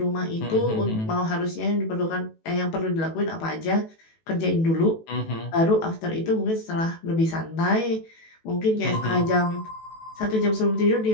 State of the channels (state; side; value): late; right; 18 ms